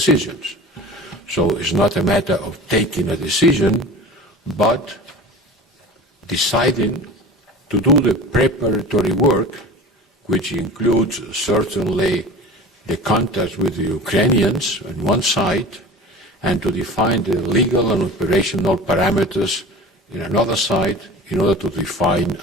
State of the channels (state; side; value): normal; both; correlation 0.35